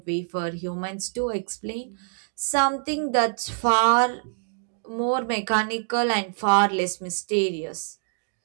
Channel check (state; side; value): silent; left; digital silence